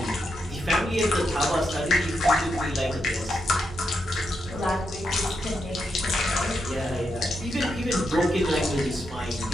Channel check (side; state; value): both; normal; correlation 0.83